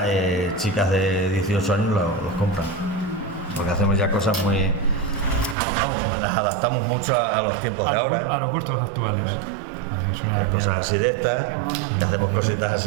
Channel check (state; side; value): drops out; left; at 5.6 s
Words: chicas de 18 años los compran, porque hacemos ya cosas muy... las adaptamos mucho a los tiempos de ahora. A los gustos actuales. Es una cosas así de estas, que hacemos cositas